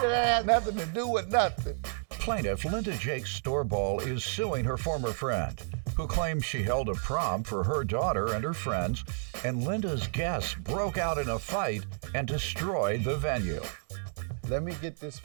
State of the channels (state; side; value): silent; left; 57 dB below the other